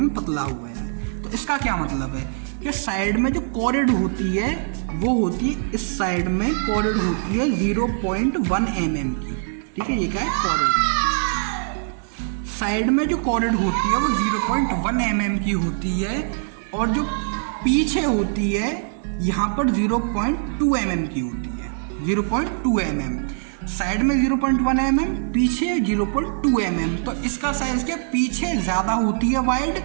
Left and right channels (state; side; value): silent; left; digital silence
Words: पतला हो गया है। तो इसका क्या मतलब है कि साइड में जो कॉरिड होती है वो होती है, इस साइड में कॉरिड होती है 0.1 mm की, ठीक है। ये क्या है, कॉरिड। साइड में जो कॉरिड होती है वो 0.1 mm की होती है, और जो पीछे होती है यहाँ पर 0.2 mm की होती है, 0.2 mm। साइड में 0.1 mm, पीछे 0.2 mm। तो इसका साइज क्या, पीछे ज़्यादा होती है वाइड,